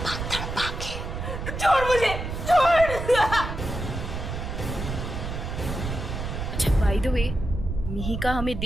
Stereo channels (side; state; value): right; noise; rumble, 5 dB below the sound